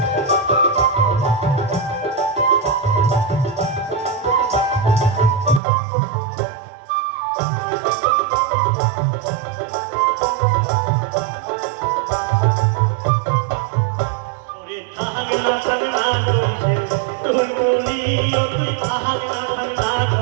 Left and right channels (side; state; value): left; drops out; at 5.6 s